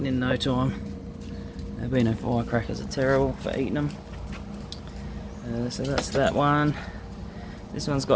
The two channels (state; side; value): identical; both; correlation 1.00